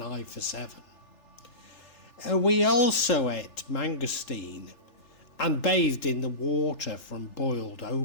I for 7. We also ate mangosteen and bathed in the water from boiled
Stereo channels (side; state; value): right; late; 3.4 ms